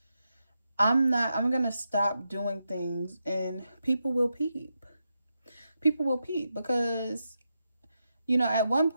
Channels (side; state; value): both; inverted; correlation -0.86